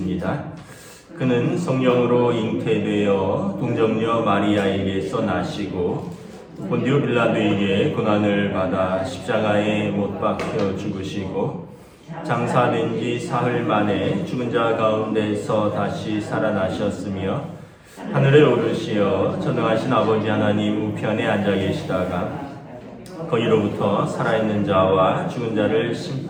그는 성령으로 잉태되어 동정녀 마리아에게서 나시고 본디오 빌라도에게 고난을 받아 십자가에 못 박혀 죽으시고 장사된 지 사흘 만에 죽은 자 가운데서 다시 살아나셨으며 하늘에 오르시어 전능하신 아버지 하나님 우편에 앉아 계시다가 거기로부터 살아있는 자와 죽은 자를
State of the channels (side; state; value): both; identical; correlation 1.00